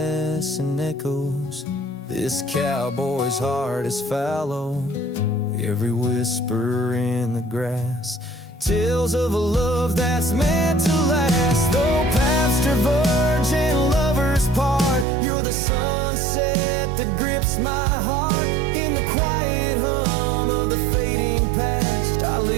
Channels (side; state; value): left; drops out; at 15.1 s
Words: and echoes, this cowboy's heart is fallow, every whisper in the grass, tales of a love that's meant to last. Though paths diverge and lovers part, you're the sunset that grips my heart. In the quiet hum of the fading past, I